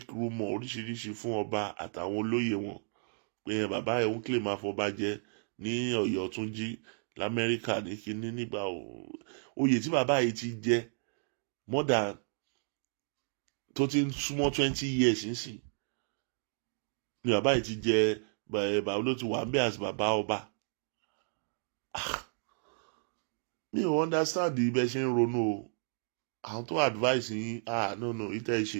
rumour oríṣiríṣi fún ọba àtàwọn olóyè wọn pé bàbá ẹ̀ ń kílè máa fọba jẹ ní Ọ̀yọ́ tún jí l'Amẹ́ríkà ní kinní nígbà oyè tí bàbá yìí ti jẹ more than tó ti ń súnmọ́ 20 years nísìn ni bàbá yìí ti jẹ bàbá ló ti wà ń bẹ̀ àti bàbá ọba mi ò understand ibẹ̀ ṣe ń ronú o àwọn tó advice yín no ìtẹ́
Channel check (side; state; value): left; silent; digital silence